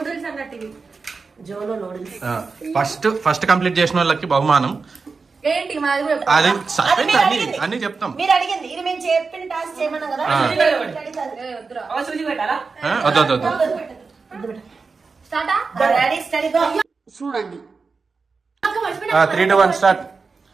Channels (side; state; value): left; quieter; 4.6 dB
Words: అన్నట్టు. జోలో నూడిల్స్ ఫస్ట్ కంప్లీట్ చేసిన వాళ్ళకి బహుమానం ఏంటి మాది కూడా అది అన్ని చెప్తాం. మీరు అడిగింది ఇది మేము చెప్పిన టాస్క్ చేయమన్నాం కదా. సూచి పెట్టాలా? వద్దు రెడీ స్టడీ గో. చూడండి 3, 2, 1 స్టార్ట్.